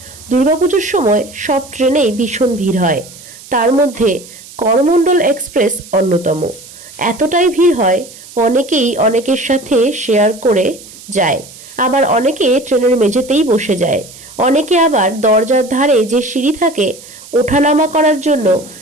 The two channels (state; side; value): noise; right; hiss, 19 dB below the sound